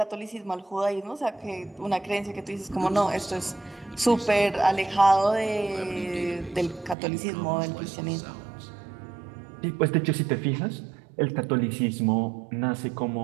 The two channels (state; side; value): drops out; left; at 7.0 s